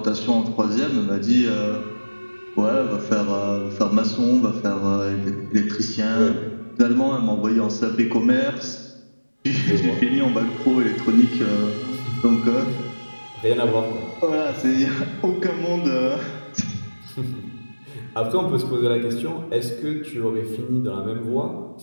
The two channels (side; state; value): both; inverted; correlation -1.00